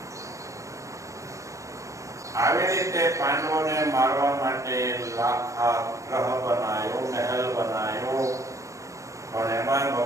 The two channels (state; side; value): late; left; 0.15 ms